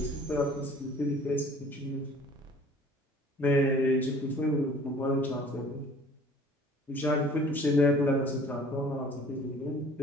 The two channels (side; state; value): both; normal; correlation 0.51